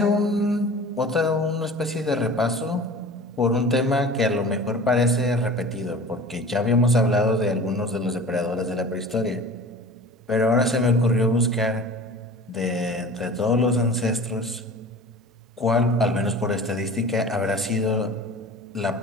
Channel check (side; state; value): both; normal; correlation 0.40